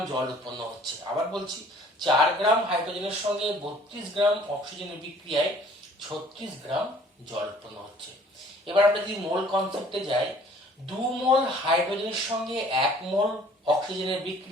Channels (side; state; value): both; normal; correlation 0.54